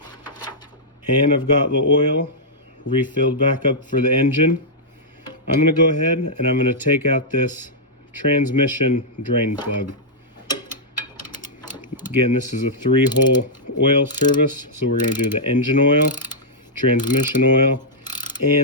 and I've got the oil refilled back up for the engine, I'm gonna go ahead and I'm gonna take out this transmission drain plug. Again, this is a 3-hole oil service, so we're gonna do the engine oil, transmission oil,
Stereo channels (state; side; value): normal; both; correlation -0.09